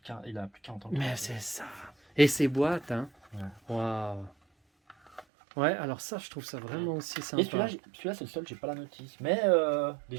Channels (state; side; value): drops out; left; at 5.2 s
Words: 40 ans. Mais c'est ça. Et ces boîtes, hein. Ouais. Waouh. Ouais, alors ça, je trouve ça vraiment aussi sympa. Et celui-là c'est le seul, j'ai pas la notice. Mais